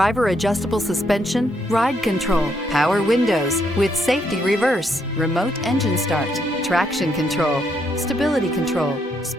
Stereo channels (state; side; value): normal; both; correlation 0.75